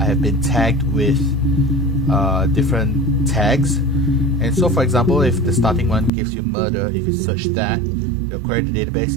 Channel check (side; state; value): left; drops out; at 6.1 s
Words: been tagged with different tags. And so, for example, if the starting one gives you murder, if you search that, you'll query the